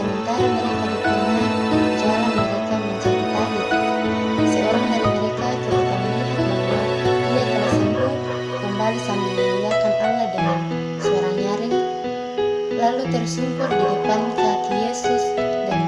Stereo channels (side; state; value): both; identical; correlation 1.00